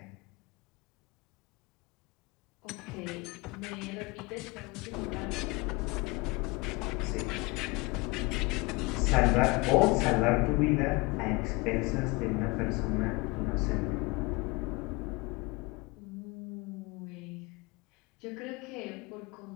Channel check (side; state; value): right; quieter; 25.7 dB